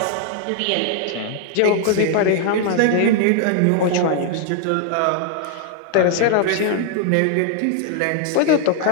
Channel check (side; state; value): both; different; correlation 0.00